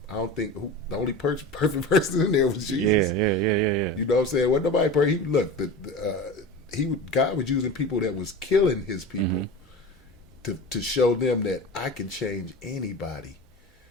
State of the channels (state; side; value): normal; both; correlation 0.31